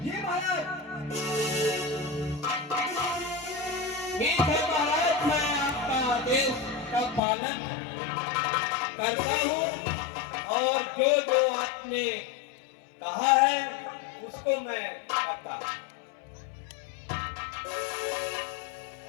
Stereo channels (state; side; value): drops out; right; at 7.2 s